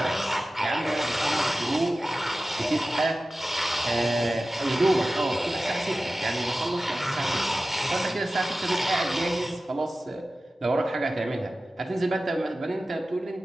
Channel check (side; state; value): both; normal; correlation 0.95